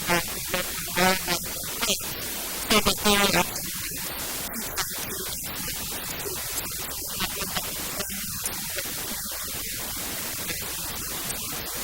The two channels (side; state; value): both; identical; correlation 1.00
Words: the local wildlife and plants so that they're actually the ones teaching to the small groups of students. And it's a really great way to get the families and the local community involved with the Palos Verdes Land Conservancy.